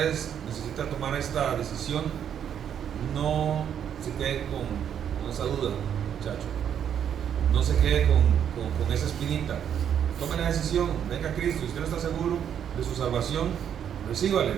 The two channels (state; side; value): quieter; left; 8.9 dB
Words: necesita tomar esta decisión, no se quede con esa duda, muchacho. No se quede con esa espinita. Tome la decisión, venga a Cristo. Si usted no está seguro de su salvación, recíbale